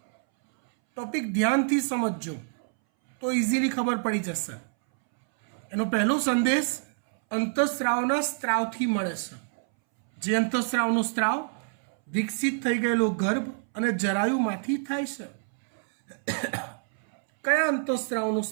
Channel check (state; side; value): silent; left; 60 dB below the other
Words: ટોપિક ધ્યાનથી સમજજો તો ઇઝીલી ખબર પડી જશે. એનો પહેલો સંદેશ અંતઃસ્ત્રાવના સ્ત્રાવથી મળે છે. જે અંતઃસ્ત્રાવનો સ્ત્રાવ વિકસિત થઈ ગયેલો ગર્ભ અને જરાયુમાંથી થાય છે. કયા અંતઃસ્ત્રાવનો